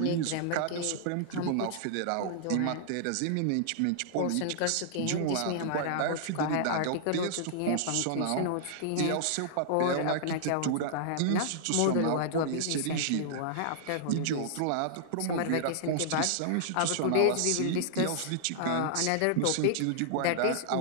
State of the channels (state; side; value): different; both; correlation -0.01